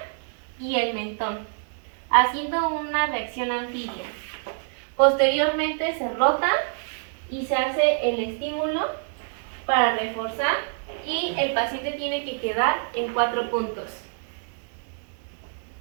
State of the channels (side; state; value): left; silent; 61 dB below the other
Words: y el mentón, haciendo una reacción anfibia. Posteriormente se rota y se hace el estímulo para reforzar y el paciente tiene que quedar en 4 puntos.